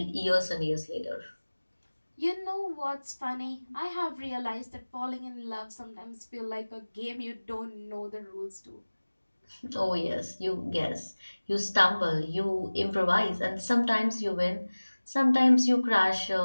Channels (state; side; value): inverted; both; correlation -1.00